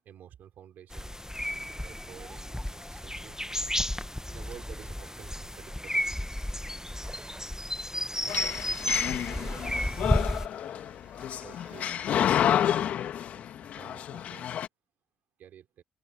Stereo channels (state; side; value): quieter; right; 4.5 dB